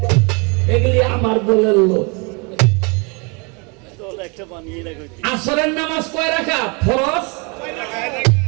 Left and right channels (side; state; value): left; quieter; 32.1 dB